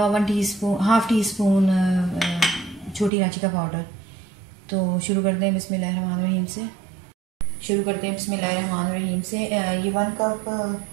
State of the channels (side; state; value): left; drops out; at 3.1 s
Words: हाफ़ टी स्पून छोटी इलायची का पाउडर। तो शुरू करते हैं बिस्मिल्लाहिर्रहमानिर्रहीम से। ये 1 कप